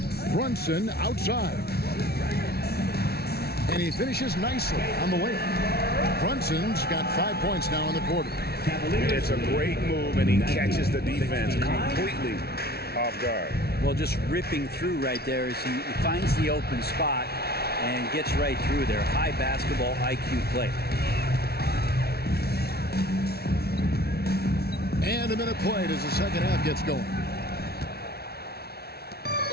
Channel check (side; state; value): right; late; 0.46 ms